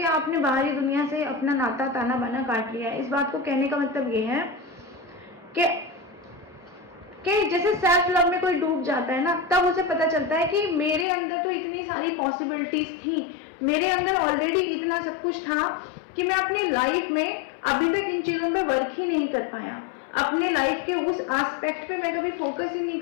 आपने बाहरी दुनिया से अपना नाता ताना बाना काट लिया है। इस बात को कहने का मतलब ये है कि जैसे सेल्फ लव में कोई डूब जाता है ना, तब उसे पता चलता है कि मेरे अंदर तो इतनी सारी पॉसिबिलिटीज थी, मेरे अंदर ऑलरेडी इतना सब कुछ था कि मैं अपनी लाइफ में अभी तक इन चीजों पे वर्क ही नहीं कर पाया। अपने लाइफ के उस एस्पेक्ट पे मैं कभी फोकस ही नहीं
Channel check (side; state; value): right; drops out; at 11.1 s